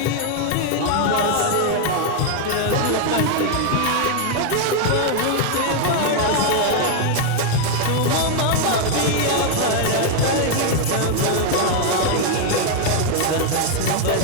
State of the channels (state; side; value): different; both; correlation 0.01